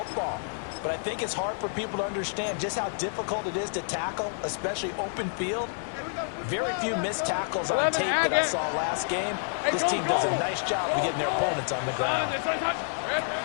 But I think it's hard for people to understand just how difficult it is to tackle, especially open field. Very few missed tackles on tape that I saw last game. This team does a nice job of getting their opponents on the ground.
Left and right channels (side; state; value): right; silent; 55 dB below the other